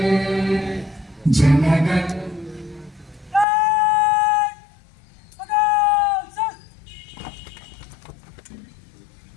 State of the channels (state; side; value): drops out; right; at 3.5 s